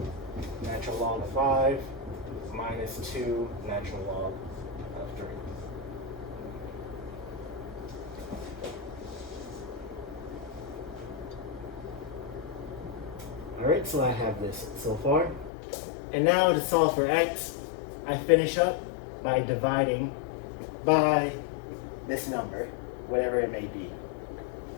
Natural log of 5 minus 2 natural log of 3. Alright, so I have this so far. And now to solve for x, I finish up by dividing by this number, whatever it may be.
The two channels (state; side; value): drops out; right; at 15.5 s